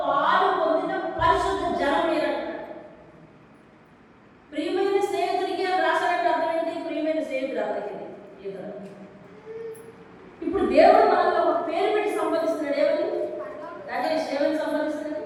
పాలు పొందిన పరిశుద్ధ జనం మీరంటాడు. ప్రియమైన స్నేహితుడికి రాసినట్టు అర్థం ఏంటి? ప్రియమైన స్నేహితుడు అర్థం. ఇప్పుడు దేవుడు మనలో ఒక పేరు పెట్టి సంబోధిస్తున్నాడు. ఏమని? రాజేష్ ఏమని సంబోధిస్తున్నాడు?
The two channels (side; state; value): both; identical; correlation 1.00